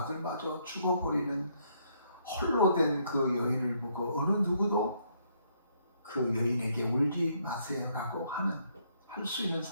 죽어버리는 홀로 된 그 여인을 보고 어느 누구도 그 여인에게 울지 마세요라고 할 수 있는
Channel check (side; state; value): both; inverted; correlation -0.71